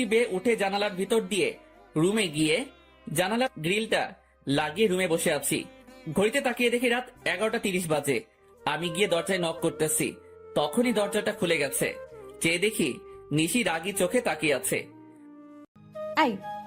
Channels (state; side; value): identical; both; correlation 1.00